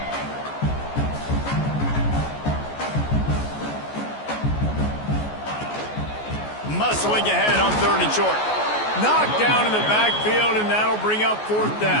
Muscling ahead on third and short. Knocked down in the backfield, and that'll bring up fourth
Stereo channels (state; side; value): late; right; 14 ms